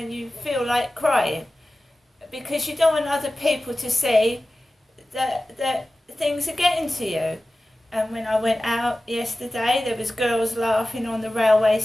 you feel like crying, because you don't want other people to see that things are getting to you. And when I went out yesterday, there was girls laughing on the railway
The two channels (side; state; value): both; normal; correlation 0.96